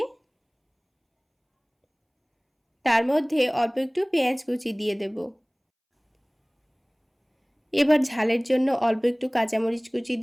তার মধ্যে অল্প একটু পেঁয়াজ কুচি দিয়ে দেব। এবার ঝালের জন্য অল্প একটু কাঁচামরিচ কুচি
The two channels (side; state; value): both; identical; correlation 1.00